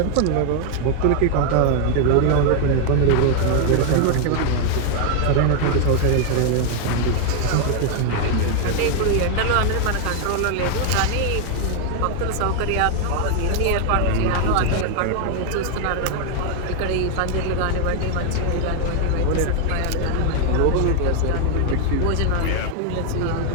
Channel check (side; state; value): both; different; correlation 0.00